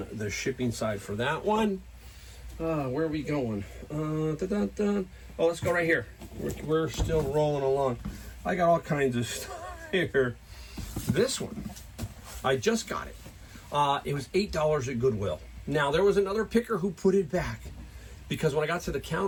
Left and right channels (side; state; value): both; identical; correlation 1.00